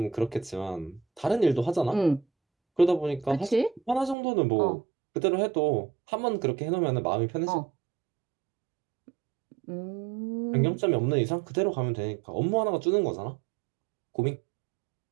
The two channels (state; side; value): drops out; left; at 4.2 s